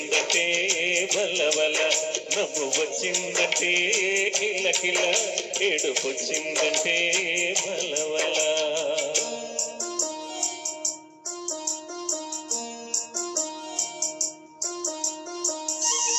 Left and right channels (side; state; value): both; identical; correlation 1.00